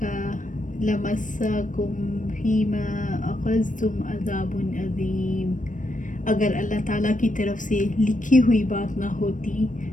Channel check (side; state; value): right; late; 0.37 ms